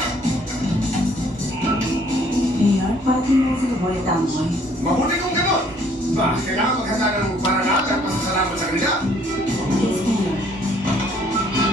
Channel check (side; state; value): both; normal; correlation 0.61